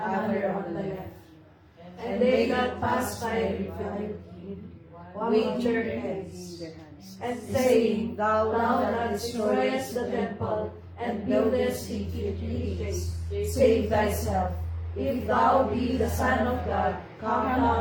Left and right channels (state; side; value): identical; both; correlation 1.00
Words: on the left. And they that passed by reviled him, with their heads, and saying, Thou that destroyest the temple, and buildest it in 3 days, save thyself. If thou be the Son of God, come